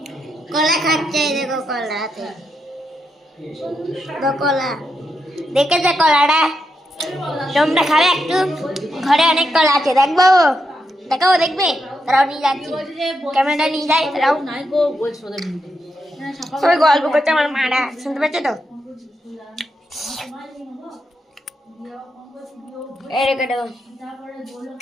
কলা খাচ্ছে, দেখো কলাতে কলা দেখেছে কলাটা, তোমরা খাবে একটু? ঘরে অনেক কলা আছে, দেখবো? দেখাবো, দেখবে? তারাও নিয়ে যাচ্ছি, ক্যামেরাটা নিয়ে যায়, তারাও সবাই গল্প করছে। আমার মারা শুনতে পাচ্ছে তো?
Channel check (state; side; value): normal; both; correlation 0.83